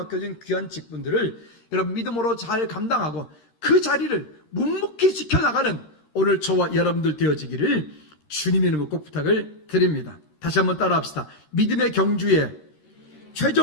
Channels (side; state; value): right; late; 13 ms